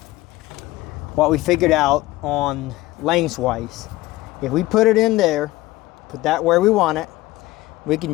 what we figured out on lengthwise, if we put it in there, put that where we want it, we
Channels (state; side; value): quieter; right; 18.2 dB